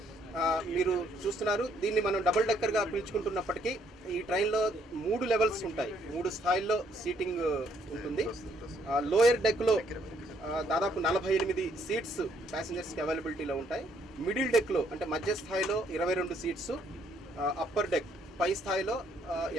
మీరు చూస్తున్నారు, దీన్ని మనం డబుల్ డెక్కర్గా పిలుచుకుంటున్నప్పటికీ ఈ ట్రైన్లో 3 లెవెల్స్ ఉంటాయి, 3 స్థాయిల్లో సీటింగ్ ఉంటుంది. లోయర్ డెక్లో దాదాపు 48 సీట్స్ ప్యాసింజర్స్కి అవైలబిలిటీలో ఉంటాయి. మిడిల్ డెక్లో అంటే మధ్య స్థాయిలో 22 సీట్స్, అప్పర్ డెక్ పై స్థాయిలో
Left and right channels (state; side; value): normal; both; correlation 0.68